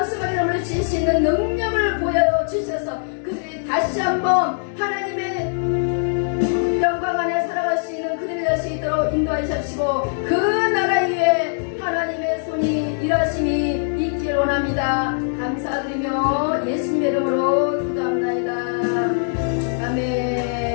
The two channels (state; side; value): silent; right; digital silence